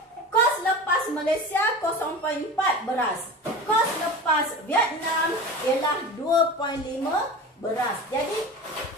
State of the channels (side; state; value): both; normal; correlation 0.32